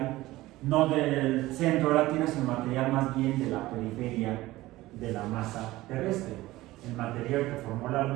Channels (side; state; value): left; quieter; 17.7 dB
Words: no del centro de la Tierra, sino material más bien de la periferia de la masa terrestre. El material que formó la